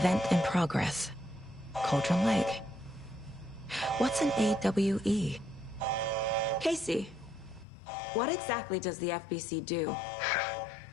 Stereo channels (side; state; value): right; drops out; at 7.7 s